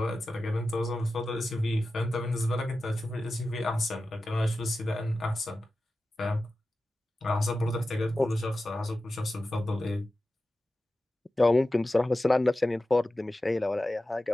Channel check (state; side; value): normal; both; correlation 0.94